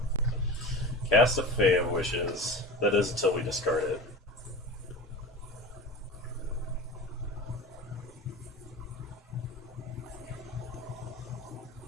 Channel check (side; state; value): both; normal; correlation 0.33